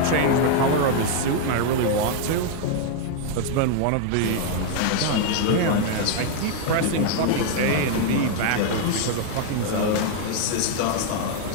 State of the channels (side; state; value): both; different; correlation 0.00